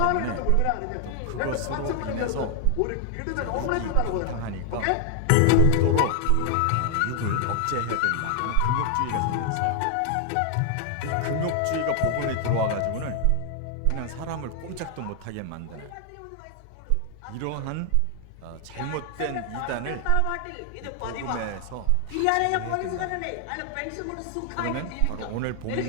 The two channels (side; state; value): both; different; correlation 0.00